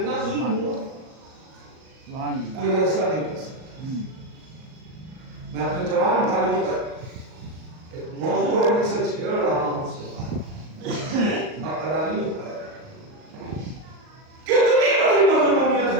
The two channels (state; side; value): late; left; 38 ms